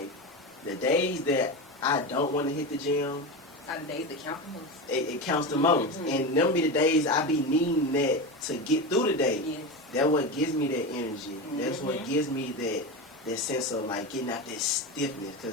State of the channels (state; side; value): normal; both; correlation 0.21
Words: the days that I don't want to hit the gym, are the days that count the most. It counts the most. And them be the days I be needing that to get through the day. Yes. That's what gives me that energy. That's what gives me that sense of like getting out that stiffness.